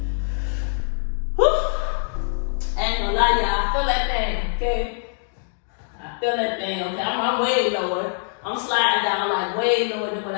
I ain't gonna lie, y'all, I feel that thing, okay? I feel that thing, okay? I'm way lower. I'm sliding down like way lower than what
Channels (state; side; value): silent; right; digital silence